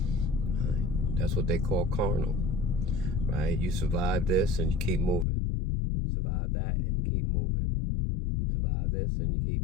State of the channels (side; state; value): right; drops out; at 5.2 s